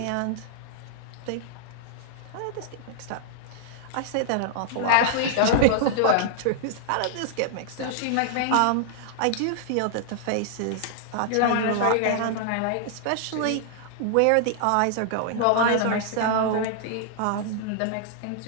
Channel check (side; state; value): both; different; correlation -0.01